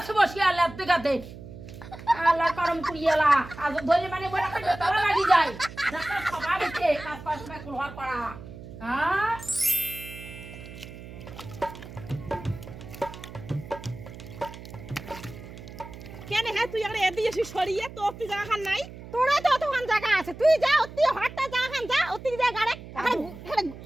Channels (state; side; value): noise; right; hum, 14 dB below the sound